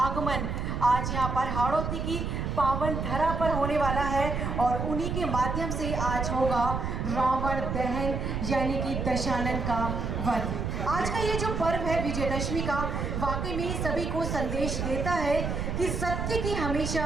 आज यहाँ पर हाड़ौती की पावन धरा पर होने वाला है और उन्हीं के माध्यम से आज होगा रावण दहन यानी कि दशानन का वध। आज का ये जो पर्व है विजयदशमी का, वाकई में सभी को संदेश देता है कि सत्य की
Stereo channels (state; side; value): noise; right; rumble, 2 dB below the sound